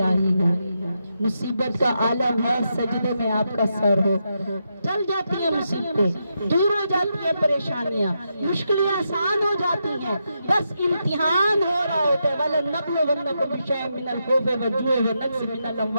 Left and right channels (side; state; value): both; inverted; correlation -0.83